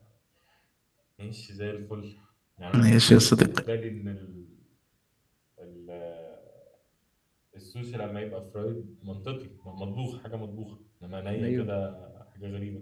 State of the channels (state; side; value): identical; both; correlation 1.00